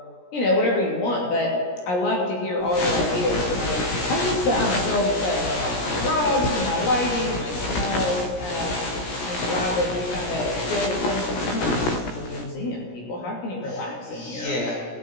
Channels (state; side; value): late; right; 17 ms